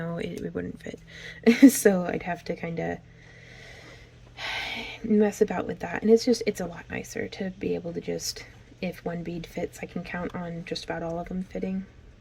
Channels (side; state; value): both; identical; correlation 1.00